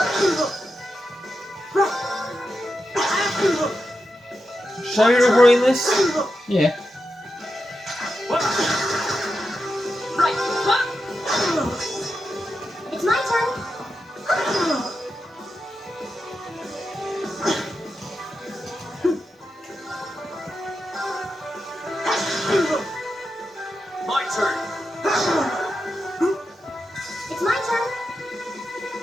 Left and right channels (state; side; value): normal; both; correlation 0.88